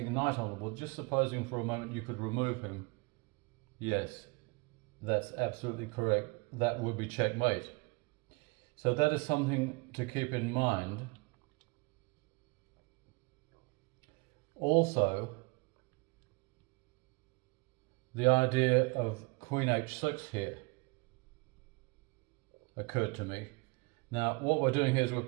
knight on the board, just supposing for a moment you could remove him, yes, that's absolutely correct, that would be checkmate. So that is something to keep in mind. Also, the idea of Queen h6 here occurred to me. Now, what we're doing here is we're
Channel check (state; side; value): quieter; left; 28.8 dB